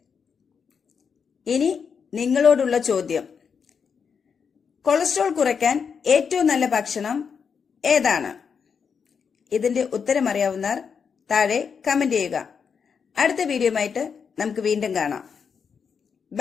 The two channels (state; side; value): quieter; right; 6.3 dB